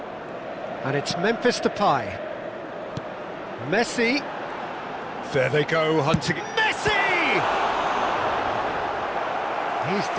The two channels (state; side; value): identical; both; correlation 1.00